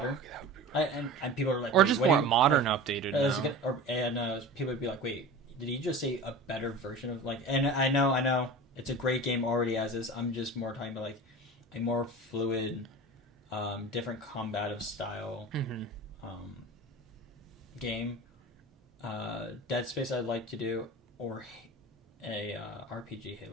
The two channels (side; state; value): both; normal; correlation 0.34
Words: And people are like... Or just more modern, updated now. People would be like, wait, did he just say a better version of... like? And I know, it's a great game already as is. I'm just more talking about like a more fluid, different combative style game. Dead Space I'd like to do, or a RPG